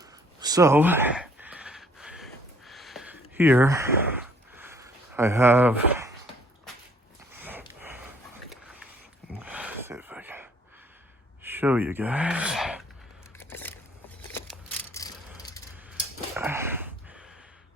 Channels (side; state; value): both; normal; correlation 0.60